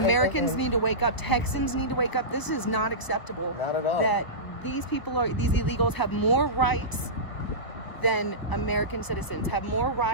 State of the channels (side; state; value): right; late; 1.0 ms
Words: need to wake up. Texans need to wake up. This is not acceptable. Not at all. That these illegals have more rights than American citizens, have more